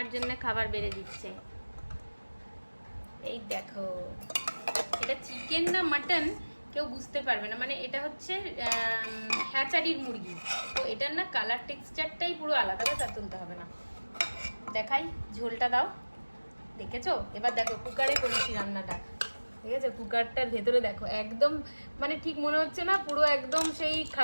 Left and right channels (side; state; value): both; inverted; correlation -1.00